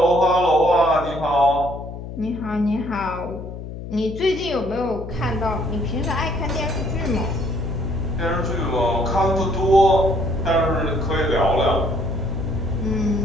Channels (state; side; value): noise; left; hum, 10 dB below the sound